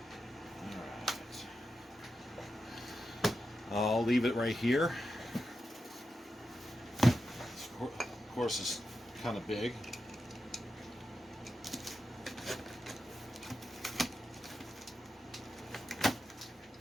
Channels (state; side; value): normal; both; correlation 0.89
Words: Alright. I'll leave it right here. Of course, it's kind of big.